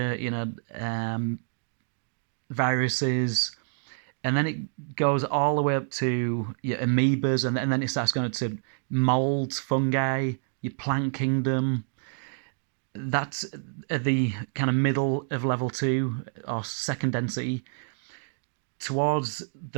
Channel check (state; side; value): silent; left; 59 dB below the other